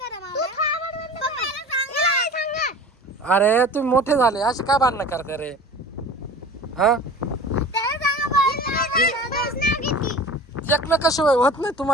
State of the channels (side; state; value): both; normal; correlation 0.39